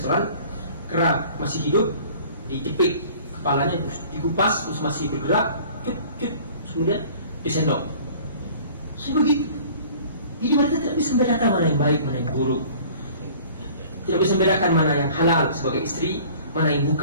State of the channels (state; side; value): inverted; both; correlation -0.48